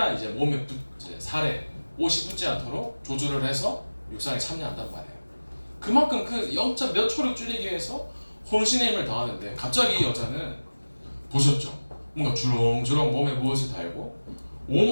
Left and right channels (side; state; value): both; inverted; correlation -1.00